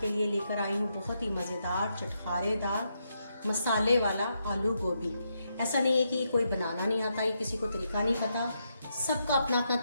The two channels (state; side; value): inverted; both; correlation -0.81